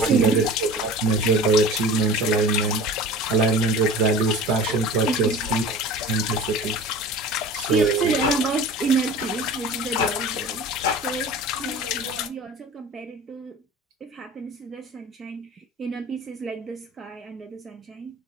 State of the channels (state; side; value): normal; both; correlation 0.38